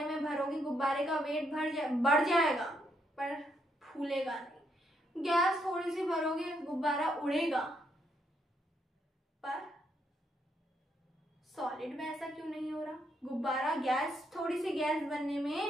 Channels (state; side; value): normal; both; correlation 0.76